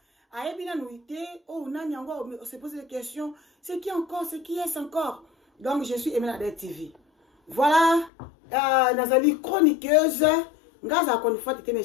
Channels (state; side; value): drops out; right; at 8.1 s